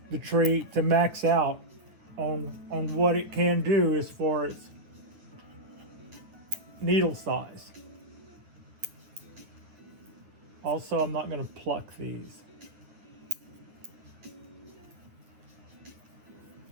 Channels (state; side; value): late; left; 9.8 ms